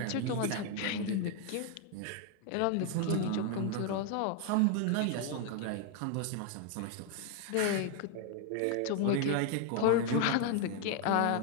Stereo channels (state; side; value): different; both; correlation 0.00